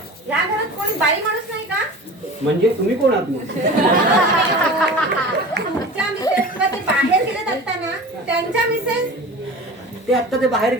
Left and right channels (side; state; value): both; normal; correlation 0.36